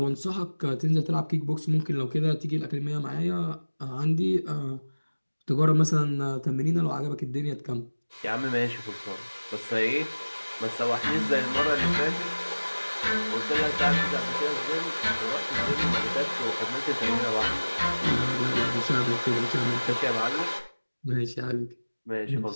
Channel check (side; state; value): both; inverted; correlation -1.00